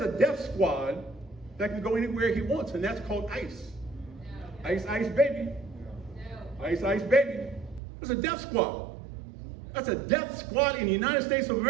a death squad that can go anywhere he wants, and that's called ICE. No. ICE, baby. No. ICE, baby. It's a death squad. That's a death squad in the United States of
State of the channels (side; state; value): left; drops out; at 7.8 s